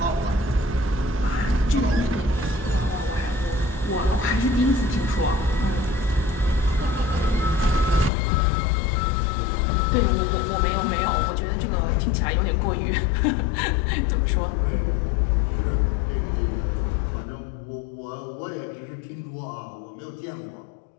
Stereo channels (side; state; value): right; drops out; at 8.1 s